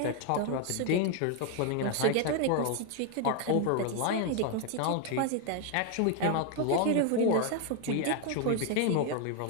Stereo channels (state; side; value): different; both; correlation 0.01